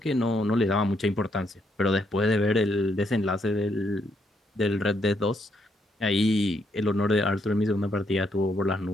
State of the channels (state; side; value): normal; both; correlation 0.75